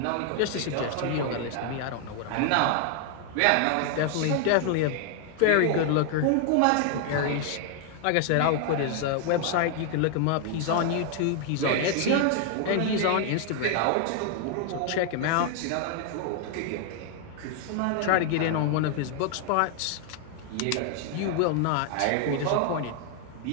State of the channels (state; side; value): different; both; correlation 0.00